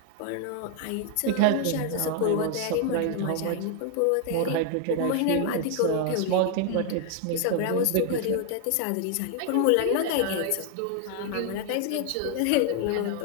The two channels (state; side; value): different; both; correlation 0.00